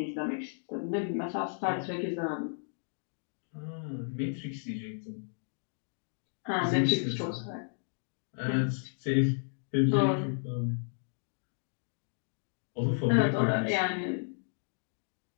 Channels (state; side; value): silent; right; digital silence